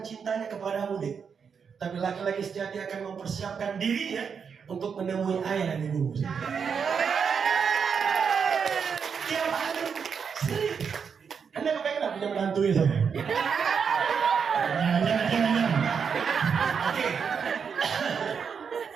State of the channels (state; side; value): quieter; left; 6.5 dB